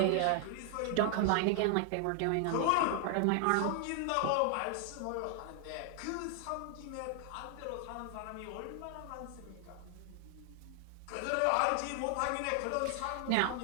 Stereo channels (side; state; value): both; different; correlation 0.00